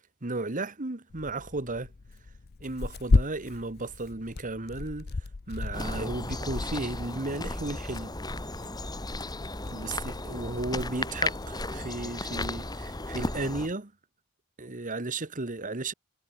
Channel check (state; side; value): normal; both; correlation 0.56